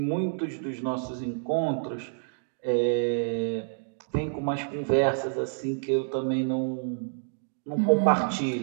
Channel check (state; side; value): silent; left; digital silence